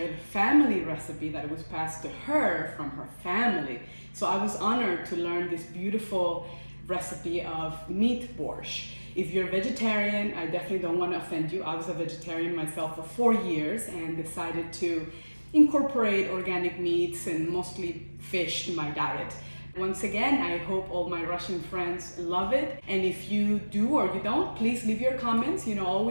the family recipe that was passed to her from her family. So I was honored to learn this beautiful recipe of meat borscht. If you're vegetarian, I definitely don't want to offend you. I was a vegetarian myself for 4 years and decided to incorporate organic meats and mostly fish to my diet. Once again, I hope all my Russian friends love it. And if you do or you don't, please leave your comments.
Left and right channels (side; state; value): both; inverted; correlation -1.00